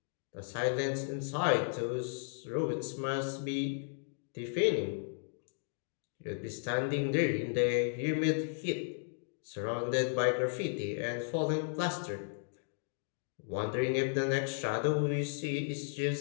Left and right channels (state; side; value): silent; right; digital silence